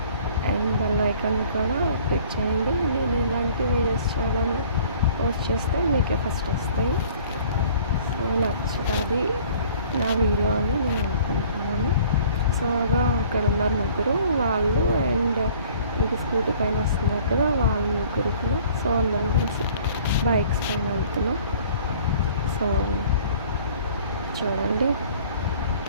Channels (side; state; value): both; inverted; correlation -0.53